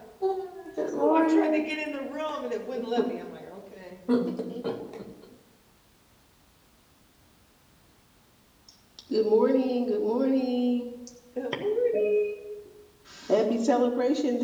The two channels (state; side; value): identical; both; correlation 1.00